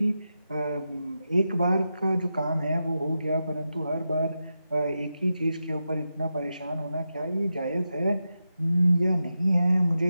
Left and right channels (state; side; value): inverted; both; correlation -0.89